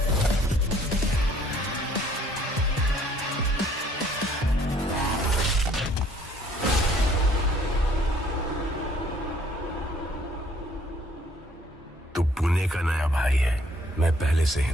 तू पुणे का नया भाई है, मैं पहले से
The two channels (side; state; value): both; normal; correlation 0.61